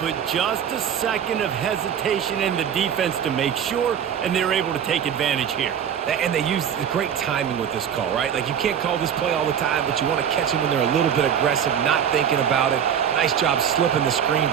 put just a second of hesitation in the defense to make sure, and they're able to take advantage here. And they use great timing with this call, right? Like, you can't call this play all the time, but you want to catch them when they're a little bit aggressive, not thinking about it. Nice job slipping the screen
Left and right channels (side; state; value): left; quieter; 8.6 dB